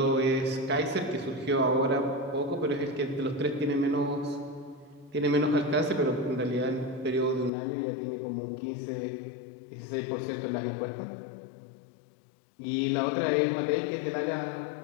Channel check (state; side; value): drops out; right; at 7.5 s